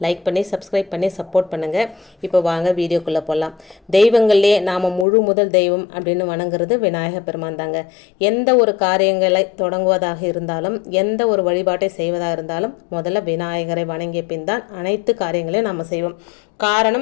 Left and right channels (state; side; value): drops out; right; at 5.1 s